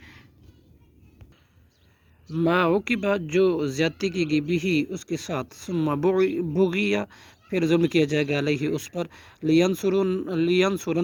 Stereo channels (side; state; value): both; identical; correlation 1.00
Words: ما عوقبہ، جو زیادتی کی گئی، بھی اس کے ساتھ، ثم بغیا، پھر ظلم کیا جائے گا، علیہ اس پر،